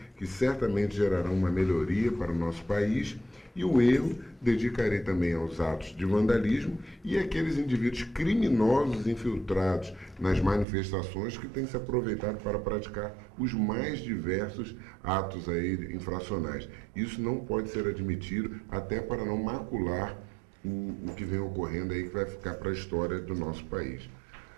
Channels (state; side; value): drops out; left; at 10.7 s